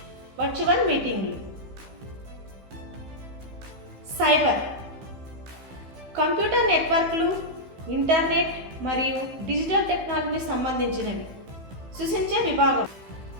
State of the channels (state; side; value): late; left; 15 ms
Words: వర్చువల్ మీటింగ్లు. సైబర్. కంప్యూటర్ నెట్వర్క్లు, ఇంటర్నెట్ మరియు డిజిటల్ టెక్నాలజీకి సంబంధించినవి. సృష్టించే విభాగం.